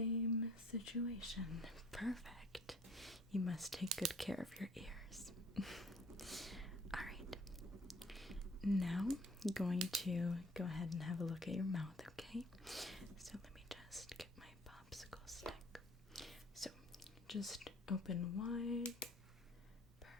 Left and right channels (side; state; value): both; normal; correlation 0.54